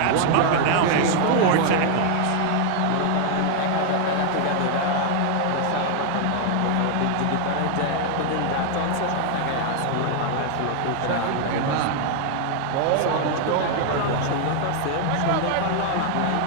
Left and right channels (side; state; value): both; different; correlation 0.00